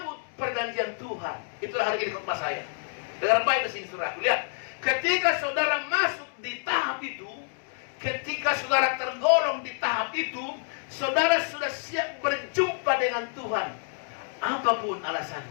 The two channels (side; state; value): right; silent; 59 dB below the other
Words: perjanjian Tuhan. Itulah hari ini khotbah saya. Dengar baik di sini saudaraku. Lihat, ketika saudara masuk di tahap itu, ketika saudara tergolong di tahap itu, saudara sudah siap berjumpa dengan Tuhan. Apapun